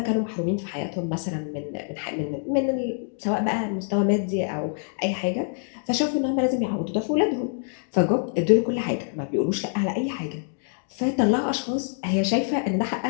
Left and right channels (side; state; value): right; silent; digital silence